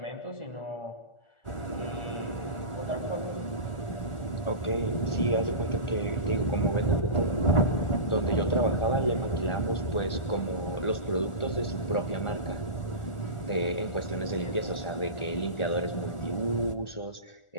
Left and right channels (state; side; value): late; right; 1.4 ms